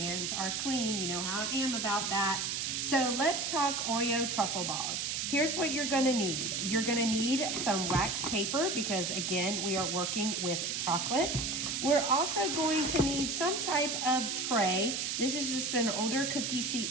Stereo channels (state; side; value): noise; right; hiss, 1 dB below the sound